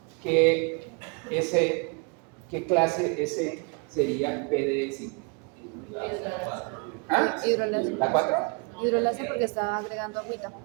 que ¿qué clase S sería PDE5? ¿Ah? Hidrolasa. ¿La 4? Hidrolasa porque está agregando agüita.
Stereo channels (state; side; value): quieter; left; 32.9 dB